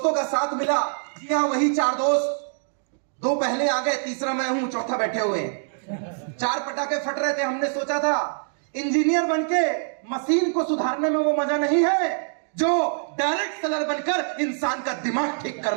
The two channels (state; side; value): silent; left; digital silence